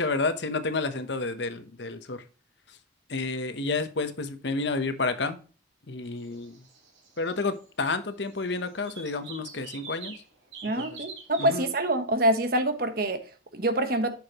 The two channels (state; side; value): normal; both; correlation -0.08